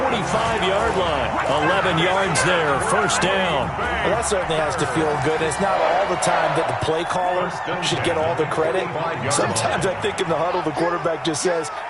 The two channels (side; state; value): both; identical; correlation 1.00